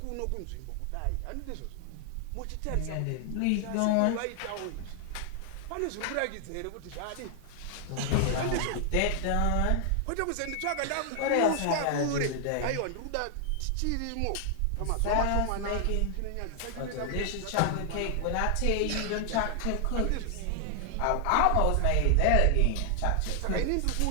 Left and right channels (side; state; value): both; different; correlation 0.00